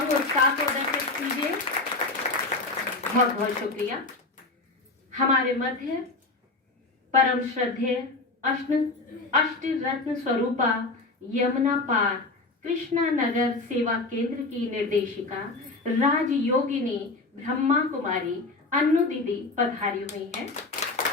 उत्साह को दर्शित कीजिए। बहुत बहुत शुक्रिया। हमारे मध्य परम श्रद्धेय अष्ट रत्न स्वरूपा यमुना पार कृष्णा नगर सेवा केंद्र की निर्देशिका राजयोगिनी ब्रह्मा कुमारी अन्नू दीदी पधारी हुई है।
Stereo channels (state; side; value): quieter; right; 3.3 dB